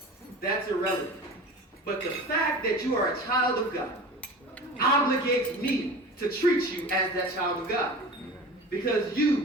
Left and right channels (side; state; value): both; normal; correlation 0.35